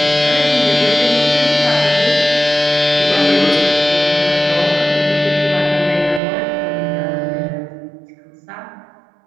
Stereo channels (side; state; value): left; drops out; at 6.2 s